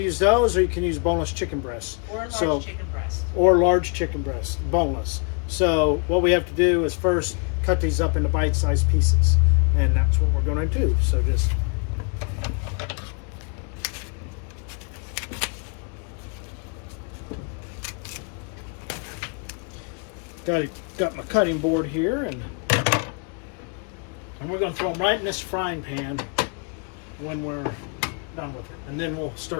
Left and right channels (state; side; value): quieter; right; 37.6 dB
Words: those or you can use boneless chicken breasts. Or large chicken breast. Or large chicken breast, boneless. So what we have to do is first cut these up into bite-sized pieces. And that's what we're going to do. So just got my cutting board here, and we're going to throw them right in this frying pan when we're done with it, and then we'll